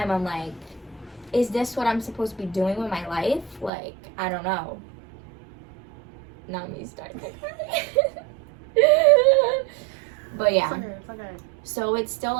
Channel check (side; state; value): left; drops out; at 3.7 s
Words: I'm like, is this what I'm supposed to be doing with my life? Like, I don't know. Now me starting to cry. But yeah. It's okay. So it's still